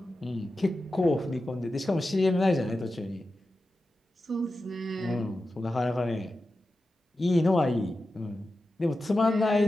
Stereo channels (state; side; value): normal; both; correlation 0.92